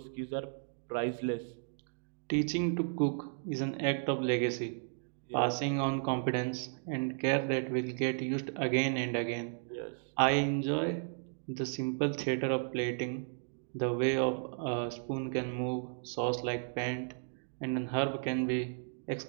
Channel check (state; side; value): silent; left; digital silence